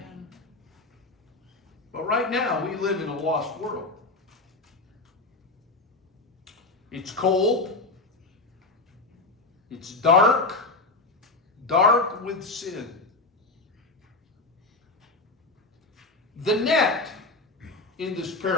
But right now, we live in a lost world. It's cold. It's dark. Dark with sin. The net in this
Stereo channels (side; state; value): right; quieter; 3.3 dB